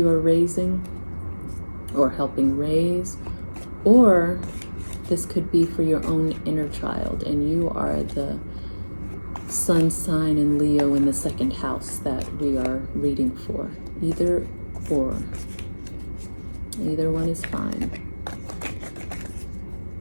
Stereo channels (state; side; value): inverted; both; correlation -1.00